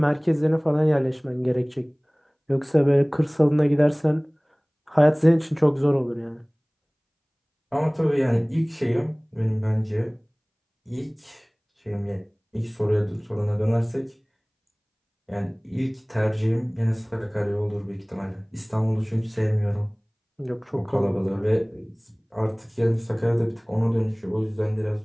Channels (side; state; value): both; identical; correlation 1.00